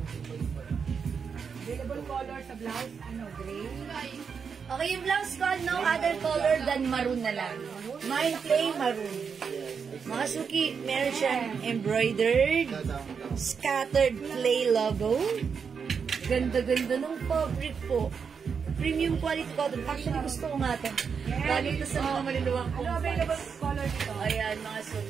Available color sa blouse, gray. Okay, yung blouse ko, no other color than maroon na lang. Mine plain maroon. Mga suki, meron siyang embroidered, scattered play logo. Ganda-ganda ng fabric po. Premium quality cotton. Actually, gusto ko nga ito. Lalo ito sa mga maluluwang Ano available color dito? Ayan, mga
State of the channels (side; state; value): left; quieter; 6.2 dB